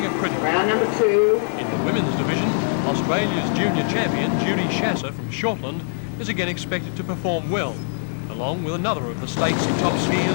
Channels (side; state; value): right; silent; digital silence